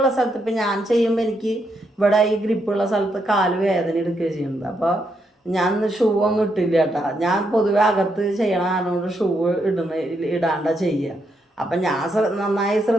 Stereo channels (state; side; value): normal; both; correlation 0.79